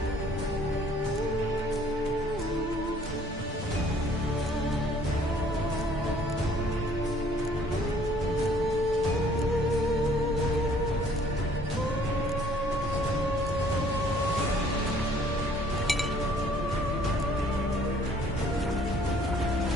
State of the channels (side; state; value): both; normal; correlation 0.58